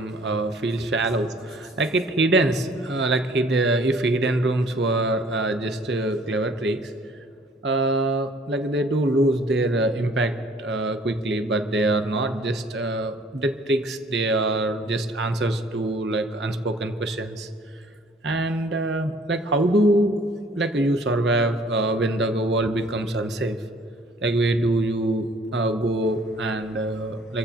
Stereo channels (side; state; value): both; normal; correlation 0.56